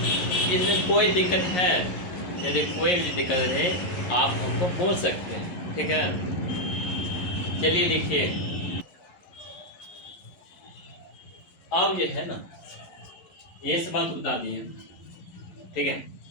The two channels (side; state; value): right; late; 11 ms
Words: इसमें कोई दिक्कत है, यदि कोई भी दिक्कत है आप हमको बोल सकते हैं, ठीक है। चलिए लिखिए, अब ये है ना, ये सवाल तो बता दिए, ठीक है।